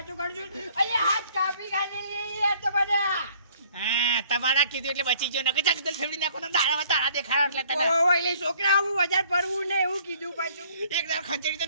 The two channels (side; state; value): both; inverted; correlation -0.58